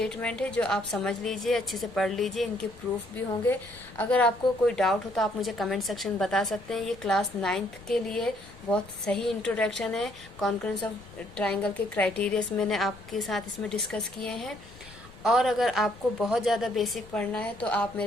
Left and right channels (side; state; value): left; noise; rumble, 21 dB below the sound